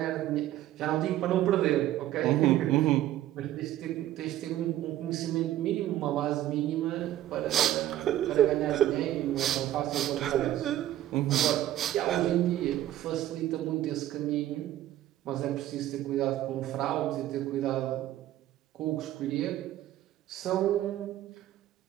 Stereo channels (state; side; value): quieter; left; 13.4 dB